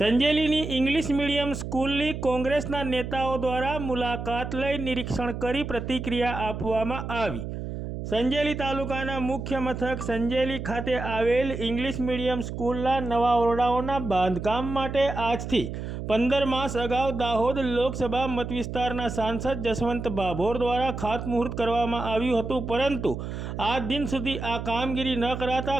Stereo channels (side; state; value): right; noise; hum, 6 dB below the sound